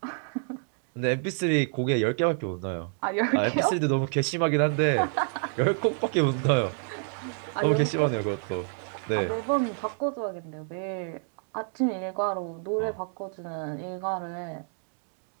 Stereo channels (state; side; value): silent; left; 59 dB below the other